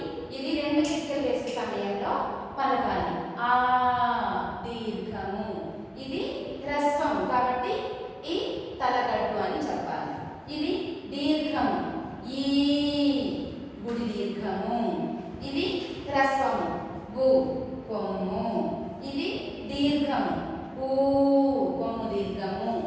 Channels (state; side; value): identical; both; correlation 1.00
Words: ఇది 2 చిట్కలు వేసే సమయంలో పలకాలి. ఆ దీర్ఘము. ఇది హ్రస్వం కాబట్టి ఈ తలకట్టు అని చెప్పాలి. ఇది దీర్ఘము, ఈ గుడి దీర్ఘము. ఇది హ్రస్వము, గు కొమ్ము. ఇది దీర్ఘము, ఊ కొమ్ము దీర్ఘము.